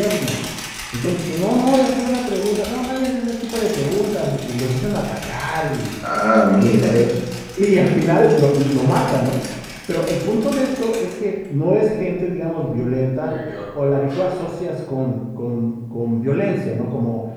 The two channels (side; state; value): both; identical; correlation 1.00